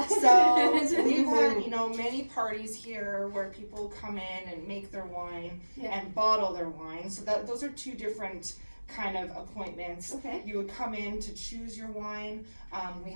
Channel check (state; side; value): inverted; both; correlation -1.00